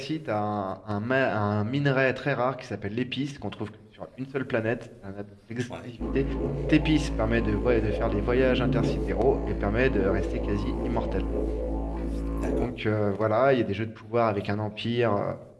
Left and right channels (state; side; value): identical; both; correlation 1.00